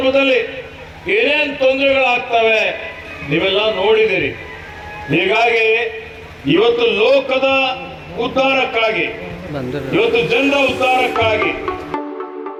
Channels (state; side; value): identical; both; correlation 1.00